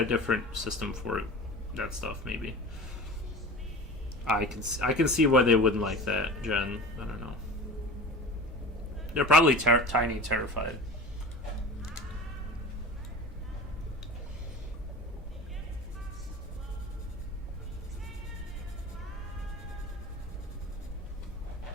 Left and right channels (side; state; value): both; normal; correlation 0.35